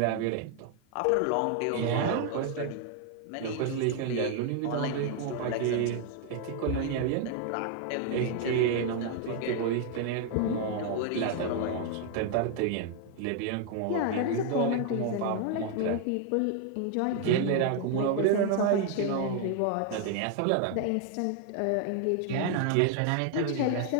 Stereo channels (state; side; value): different; both; correlation 0.00